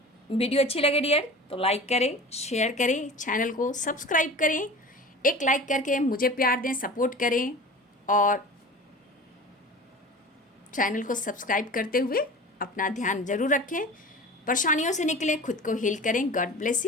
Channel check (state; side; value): normal; both; correlation 0.37